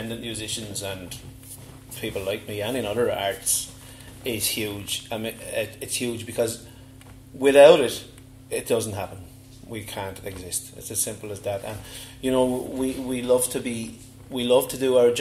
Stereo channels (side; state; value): both; identical; correlation 1.00